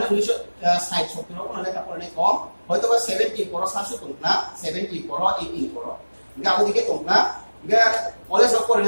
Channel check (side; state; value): both; inverted; correlation -1.00